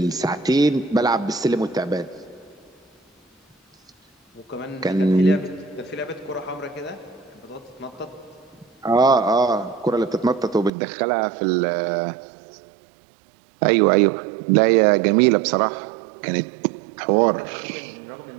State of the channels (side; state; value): left; drops out; at 10.7 s